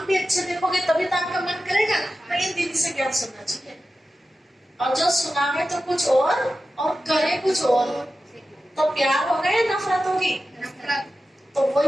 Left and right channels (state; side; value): normal; both; correlation 0.93